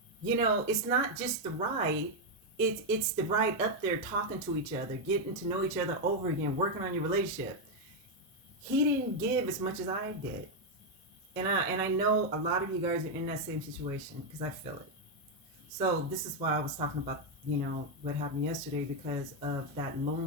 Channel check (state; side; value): normal; both; correlation 0.02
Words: It's not just the ride. It's the ride up there, talking to each other, getting to know each other over again, working on your relationship. He didn't give as much as I did. And I know a lot of you guys are in that same situation, because I feel it. So this is why I was talking about, what happened yesterday, because of that